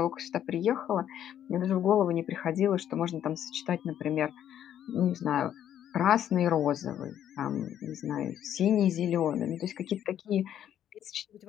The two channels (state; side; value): quieter; right; 10.4 dB